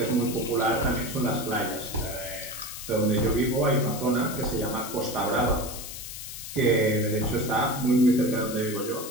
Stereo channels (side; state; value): left; noise; hiss, 9 dB below the sound